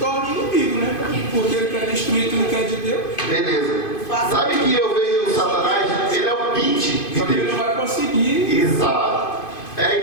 inimigo, né? Porque ele quer destruir tudo que é de Deus. Beleza. Sabe que eu vejo o Satanás? Ele é o pinte de Só que ele Deus. não vai conseguir. Exato. A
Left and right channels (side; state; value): right; late; 2.5 ms